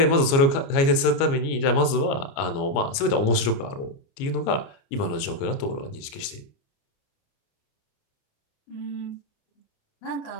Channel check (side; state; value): right; late; 29 ms